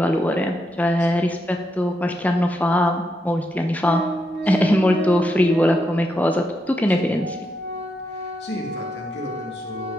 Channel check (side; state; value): both; normal; correlation 0.82